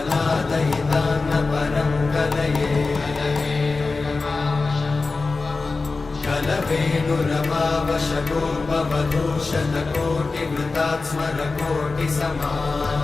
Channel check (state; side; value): quieter; right; 3.9 dB